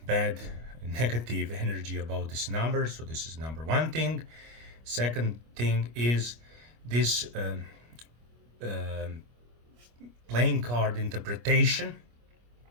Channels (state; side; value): late; left; 25 ms